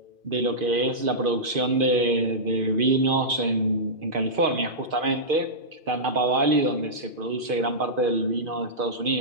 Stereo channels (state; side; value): late; left; 2.5 ms